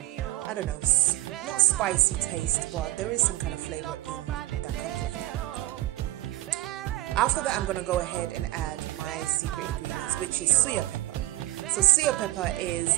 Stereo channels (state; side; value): quieter; left; 16.4 dB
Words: I don't know, not spicy taste, but there is some kind of flavor in that comes with it. After that, I'm going to go ahead and add my secret ingredients, which is suya pepper. So suya pepper is